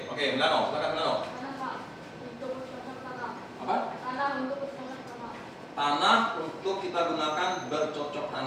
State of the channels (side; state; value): both; identical; correlation 1.00